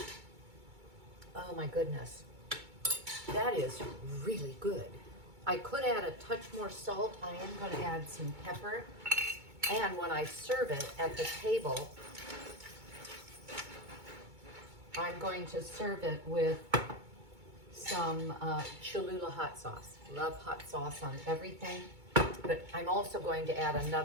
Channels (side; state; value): left; late; 2.2 ms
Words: Oh my goodness. That is really good. I could add a touch more salt. I am going to add some pepper. And when I serve it at the table, I'm going to serve it with some Cholula hot sauce. Love hot sauce on everything. But I'm also going to add